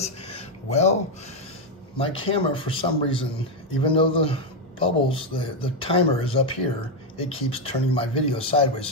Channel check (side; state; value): both; normal; correlation 0.05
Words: well, my camera for some reason, even though the bubbles, the timer is up here, it keeps turning my video sideways.